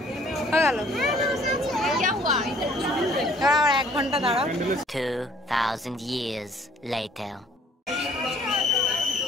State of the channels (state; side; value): normal; both; correlation 0.58